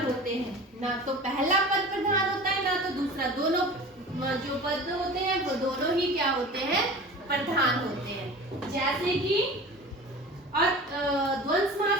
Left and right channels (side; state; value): both; normal; correlation 0.37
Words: होते हैं, ना तो पहला पद प्रधान होता है ना तो दूसरा। दोनों जो पद होते हैं वो दोनों ही क्या होते हैं? प्रधान होते हैं। जैसे कि और द्वंद्व